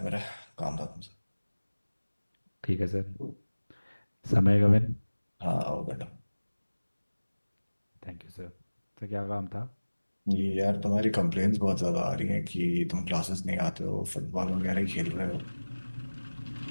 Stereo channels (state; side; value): inverted; both; correlation -1.00